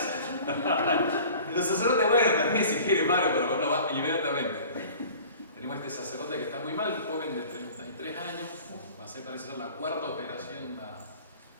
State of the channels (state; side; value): inverted; both; correlation -0.45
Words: Los sacerdotes, bueno, también si quiere paro, pero uno va inmediatamente. Tenemos este sacerdote que está muy mal, joven de 33 años, parece ser la cuarta operación a